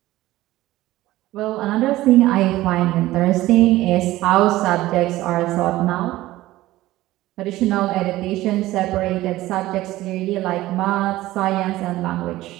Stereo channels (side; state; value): left; quieter; 16.6 dB